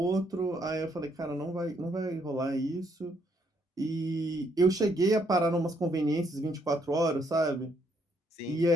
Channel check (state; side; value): normal; both; correlation 0.71